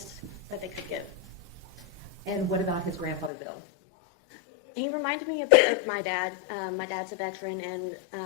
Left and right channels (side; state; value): right; drops out; at 3.3 s